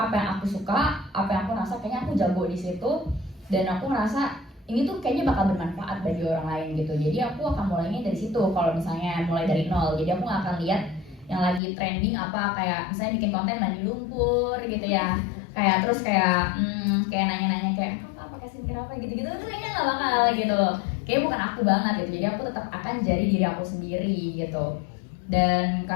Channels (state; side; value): drops out; right; at 11.6 s